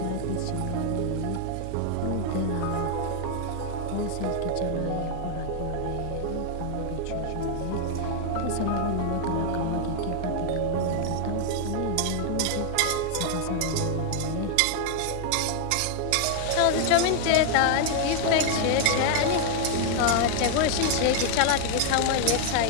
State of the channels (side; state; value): both; different; correlation 0.00